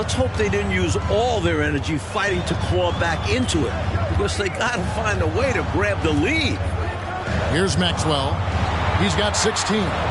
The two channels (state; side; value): identical; both; correlation 1.00